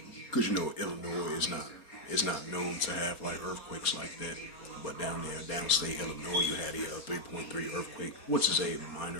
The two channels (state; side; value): late; right; 4.2 ms